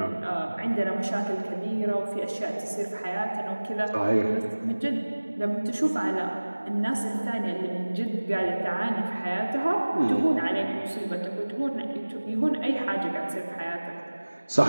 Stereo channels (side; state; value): both; inverted; correlation -1.00